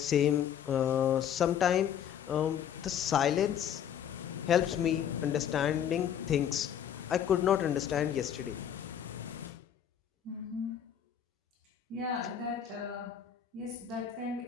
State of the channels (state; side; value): quieter; right; 9.1 dB